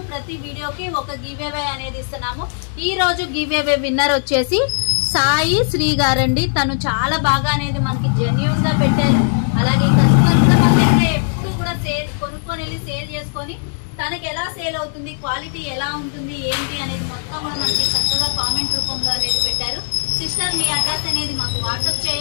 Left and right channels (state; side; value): silent; right; digital silence